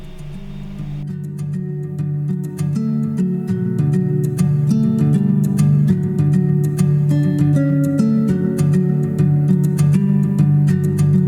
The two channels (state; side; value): identical; both; correlation 1.00